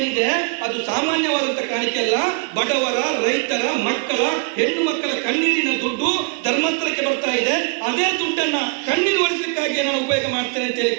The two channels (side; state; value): left; quieter; 34.0 dB